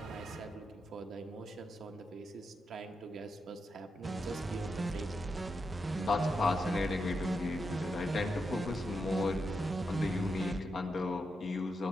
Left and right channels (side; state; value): both; normal; correlation 0.85